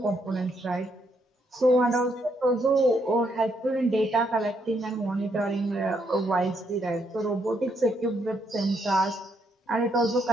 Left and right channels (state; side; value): normal; both; correlation 0.75